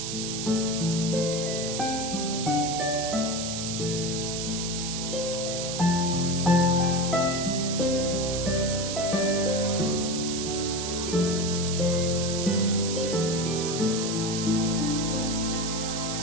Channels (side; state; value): right; noise; hiss, 4 dB below the sound